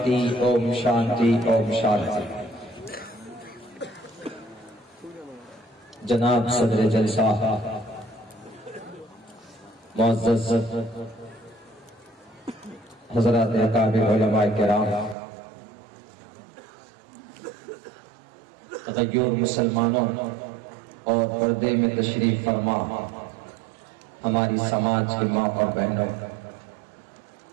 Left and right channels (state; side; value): drops out; left; at 15.2 s